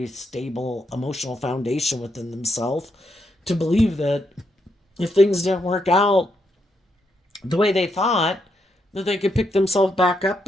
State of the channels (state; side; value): normal; both; correlation 0.79